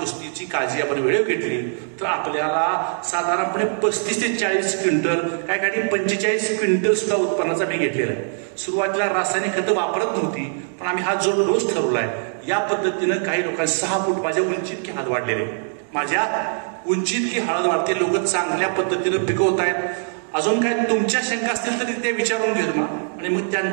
काळजी आपण वेळेवर घेतली तर आपल्याला साधारणपणे 35 ते 40 क्विंटल, काय काही 45 क्विंटल सुद्धा उत्पन्नाचा मी घेतलेला आहे. सुरुवातीला रासायनिक खतं वापरत नव्हती, पण आम्ही हा जो डोस ठरवलाय या पद्धतीनं काही लोकांनी 6 फूट माझ्या उंची इतकी हळद वाढलेली, माझ्या उंची इतकी हळद वाढते, लोक चांगल्या पद्धतीनं पिकवत आहेत. अजून काय तुमच्या शंका असतील तरी ते विचारून घेतो मग, आणि मग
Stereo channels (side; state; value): left; silent; digital silence